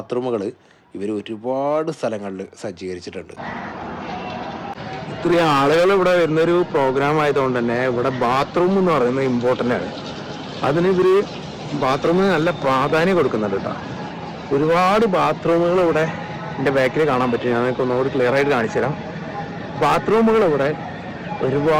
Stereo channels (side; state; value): both; identical; correlation 1.00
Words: ഇവർ ഒരുപാട് സ്ഥലങ്ങളിൽ സജ്ജീകരിച്ചിട്ടുണ്ട്. ഇത്രയും ആളുകൾ ഇവിടെ വരുന്നൊരു പ്രോഗ്രാം ആയതുകൊണ്ട് തന്നെ ഇവിടെ ബാത്റൂം എന്ന് പറയുന്നത് ഇമ്പോർട്ടൻ്റ് ആണ്. അതിന് ഇവർ ബാത്റൂമിന് നല്ല പ്രാധാന്യം കൊടുക്കുന്നുണ്ട് കേട്ടോ. ഒരുപാട് ബാത്റൂമുകൾ ഇവിടെ എൻ്റെ ബാക്കിൽ കാണാൻ പറ്റും. ഞാൻ നിങ്ങൾക്ക് ഒന്നുകൂടി ക്ലിയർ ആയിട്ട് കാണിച്ചു തരാം. ബാത്റൂമുകൾ ഇവിടെ